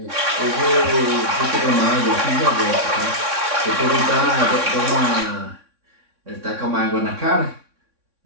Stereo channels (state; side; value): late; left; 3.6 ms